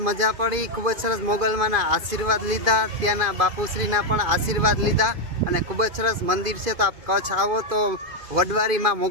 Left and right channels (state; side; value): late; left; 2.5 ms